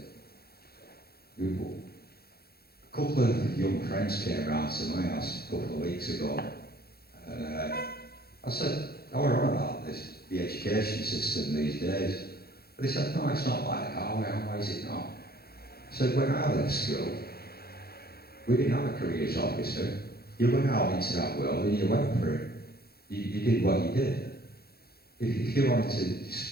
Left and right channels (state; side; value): late; right; 0.45 ms